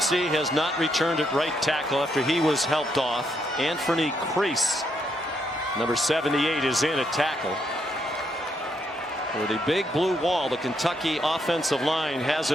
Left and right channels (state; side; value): normal; both; correlation 0.76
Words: has not returned at right tackle after he was helped off. Anthony Crease, number 78, is in at tackle. For the big blue wall, the Kentucky offensive line